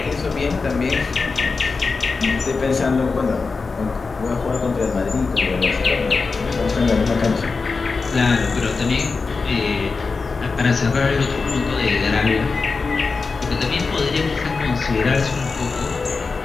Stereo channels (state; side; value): quieter; right; 4.4 dB